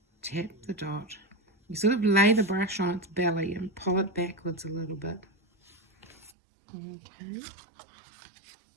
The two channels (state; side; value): drops out; left; at 6.4 s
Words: tap the dot. You sort of lay the brush on its belly and pull it backwards a little bit. Okay.